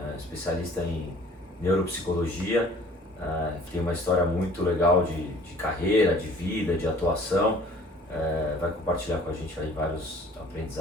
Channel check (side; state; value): both; normal; correlation 0.52